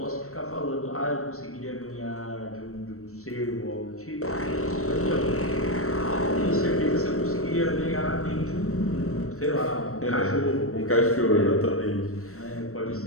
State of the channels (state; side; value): late; right; 0.64 ms